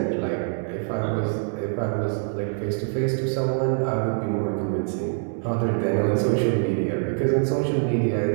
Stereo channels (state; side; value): silent; left; 62 dB below the other